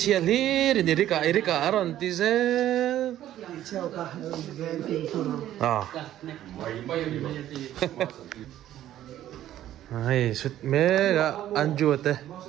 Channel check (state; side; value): quieter; left; 12.5 dB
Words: li đến Eric cả aron tiệt ai sút mẹ cả anh chuột thế